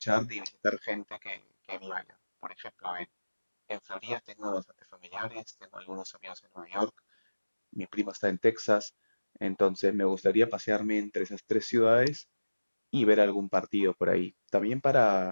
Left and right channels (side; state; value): both; inverted; correlation -1.00